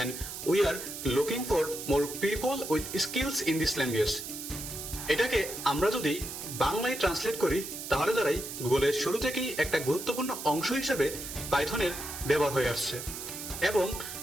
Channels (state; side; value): noise; right; hiss, 8 dB below the sound